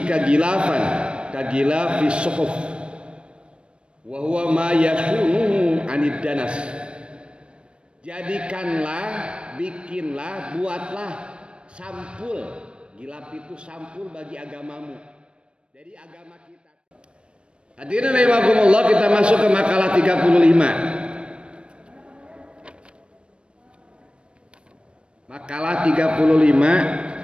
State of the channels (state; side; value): late; left; 0.057 ms